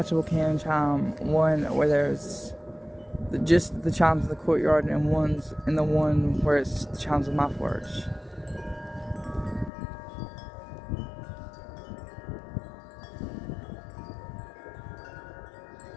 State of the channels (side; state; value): right; drops out; at 9.7 s